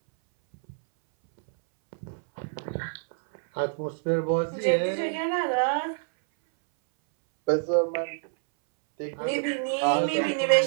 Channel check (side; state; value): left; silent; 60 dB below the other